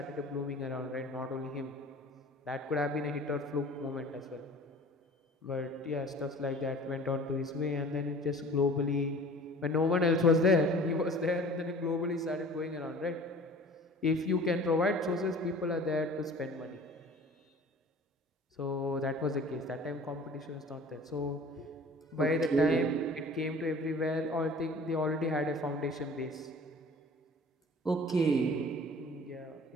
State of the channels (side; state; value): both; normal; correlation 0.45